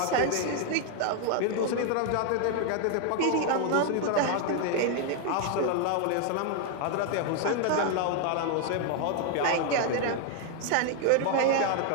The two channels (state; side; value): different; both; correlation 0.00